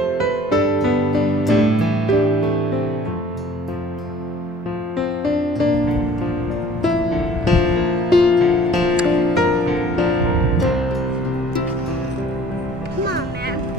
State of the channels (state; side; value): normal; both; correlation 0.53